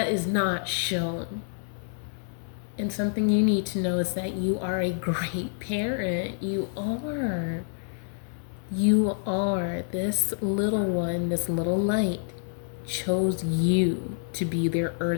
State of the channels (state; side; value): silent; right; digital silence